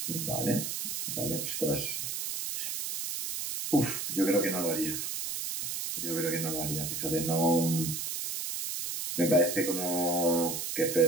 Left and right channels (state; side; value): noise; right; hiss, 4 dB below the sound